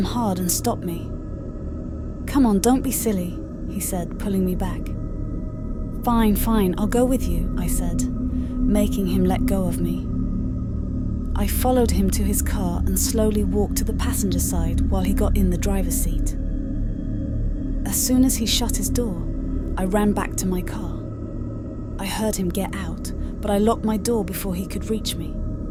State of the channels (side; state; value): both; identical; correlation 1.00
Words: hard and stopped me. "Come on, don't be silly," he said, pulling me back. Fine, I'll go with you," I said, making him let go of me. I followed him to his car and slowly walked to the passenger side while he got in the driver's seat. As soon as he shut his door, I ran back to my car. I heard him get out, but I locked my door before he could reach me.